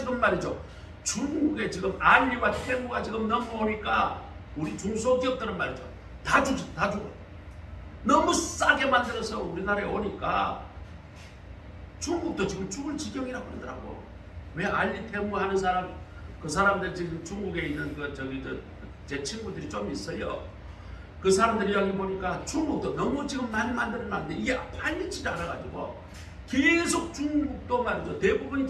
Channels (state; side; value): identical; both; correlation 1.00